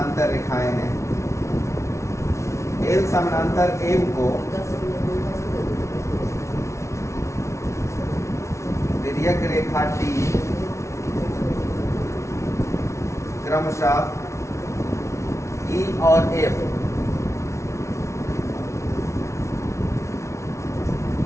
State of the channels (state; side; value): late; right; 0.14 ms